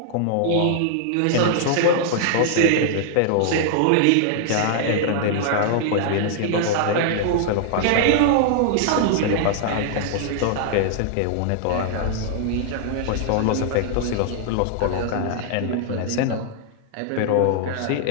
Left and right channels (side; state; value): both; different; correlation -0.01